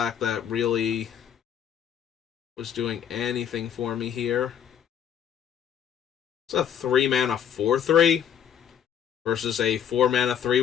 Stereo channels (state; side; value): quieter; right; 9.0 dB